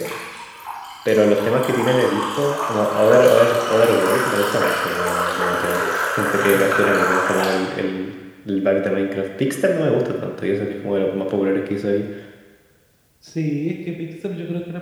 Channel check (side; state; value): both; identical; correlation 1.00